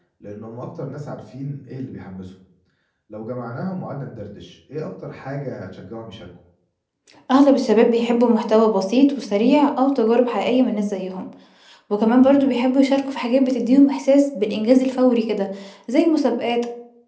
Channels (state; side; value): identical; both; correlation 1.00